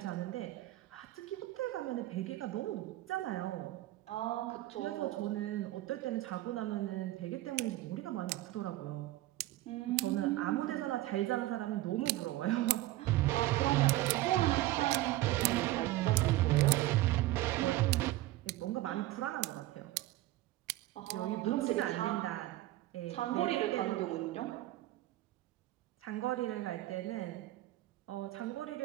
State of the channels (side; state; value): left; quieter; 16.6 dB